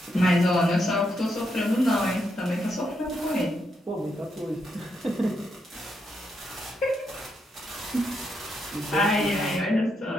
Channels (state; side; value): normal; both; correlation 0.80